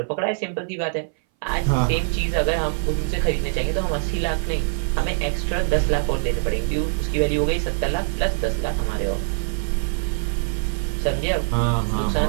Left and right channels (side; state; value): left; silent; 60 dB below the other